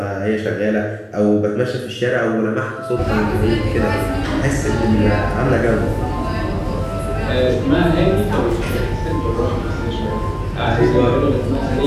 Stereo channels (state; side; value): identical; both; correlation 1.00